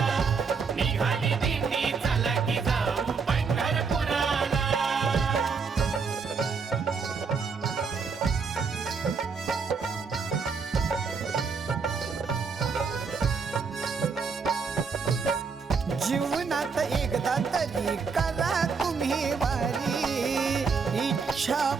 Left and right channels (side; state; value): left; quieter; 5.3 dB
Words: निघाली दिंडी चला की जाऊ पंढरपुराला जीवनात एकदा तरी करा तुम्ही वारी इच्छा